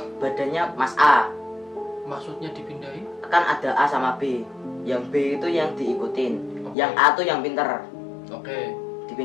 badannya Mas A. Maksudnya dipindahin? Kan ada A sama B. Yang B itu yang diikutin. Oke. Yang A tuh yang pinter. Oke.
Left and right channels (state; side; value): drops out; right; at 6.8 s